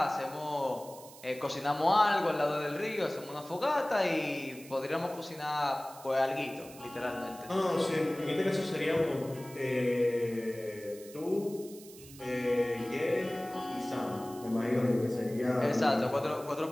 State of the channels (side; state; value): right; noise; hiss, 19 dB below the sound